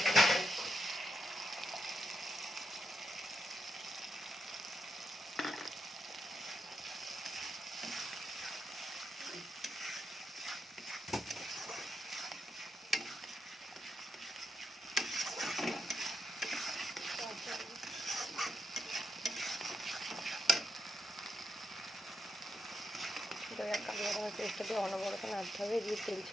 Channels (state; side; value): normal; both; correlation 0.83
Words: দই আর কালো বাদামের পেস্টটা দিয়ে অনবরত নাড়তে হবে, দিয়ে তেল